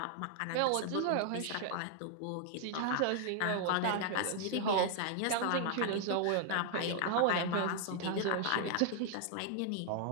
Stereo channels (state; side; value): different; both; correlation 0.00